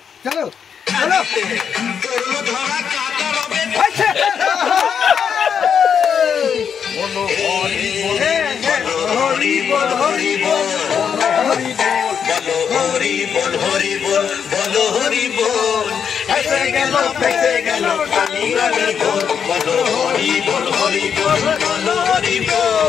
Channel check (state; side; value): quieter; right; 7.4 dB